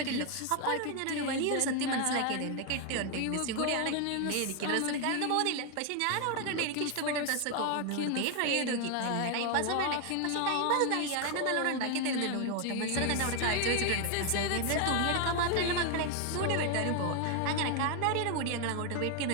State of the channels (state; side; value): different; both; correlation 0.01